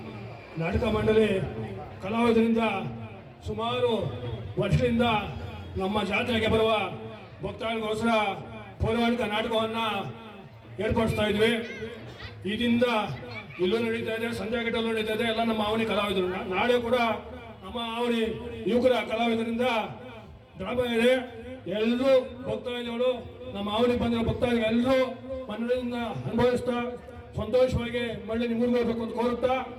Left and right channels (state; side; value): identical; both; correlation 1.00